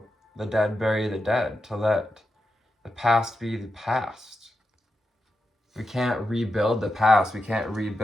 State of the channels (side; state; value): both; normal; correlation 0.88